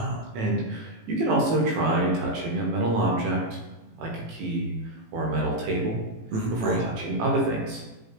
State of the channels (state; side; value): late; left; 18 ms